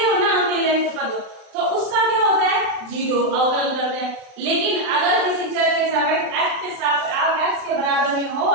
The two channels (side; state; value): left; late; 35 ms